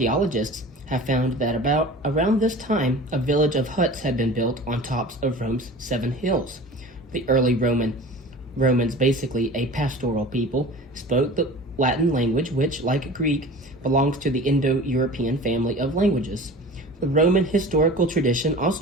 have found that around this time, a village of huts had been built on tops of Rome's 7 hills. The early Romans, basically a pastoral people, spoke the Latin language, which, like Greek, belongs to the Indo-European family of languages. The Roman historical tradition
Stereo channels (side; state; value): both; normal; correlation 0.38